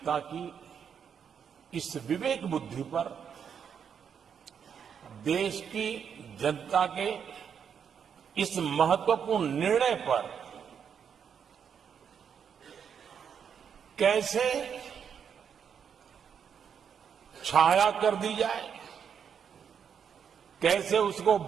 की इस विवेक बुद्धि पर, देश की जनता के इस महत्वपूर्ण निर्णय पर कैसे छाया कर दी जाए, कैसे उसको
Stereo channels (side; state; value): left; quieter; 7.5 dB